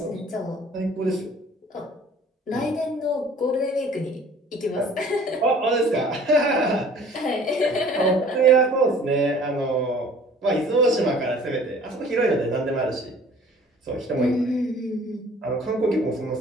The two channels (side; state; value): both; normal; correlation 0.51